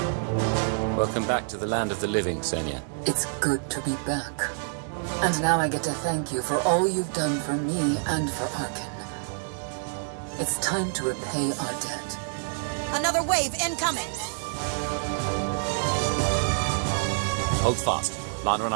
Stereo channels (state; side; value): silent; left; digital silence